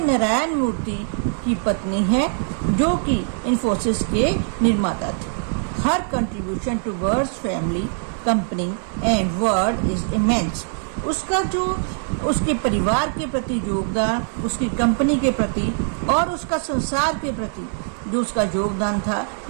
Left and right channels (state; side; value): silent; left; 63 dB below the other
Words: मूर्ति की पत्नी है जो कि इन्फोसिस के निर्माता थे। Her contribution towards family company and world is immense. उसका जो उसके परिवार के प्रति योगदान, उसकी कंपनी के प्रति और उसका संसार के प्रति जो उसका योगदान था